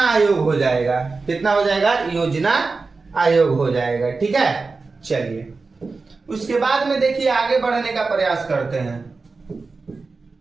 आयोग हो जाएगा। कितना हो जाएगा? योजना आयोग हो जाएगा। ठीक है, चलिए उसके बाद में देखिए आगे बढ़ने का प्रयास करते हैं।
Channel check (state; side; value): quieter; left; 4.1 dB